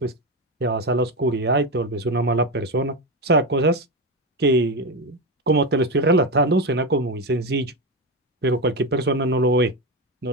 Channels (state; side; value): normal; both; correlation 0.15